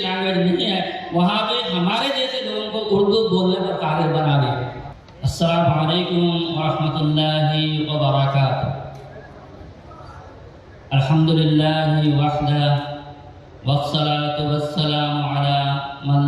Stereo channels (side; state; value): both; identical; correlation 1.00